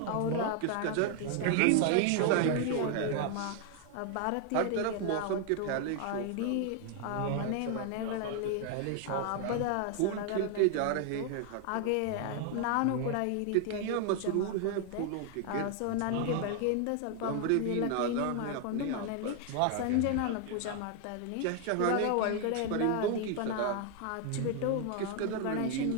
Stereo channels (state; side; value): different; both; correlation 0.00